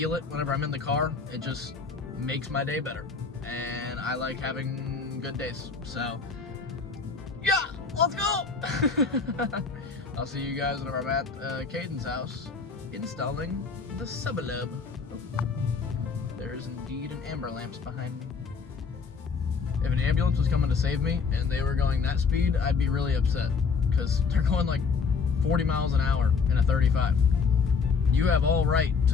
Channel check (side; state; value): right; quieter; 5.1 dB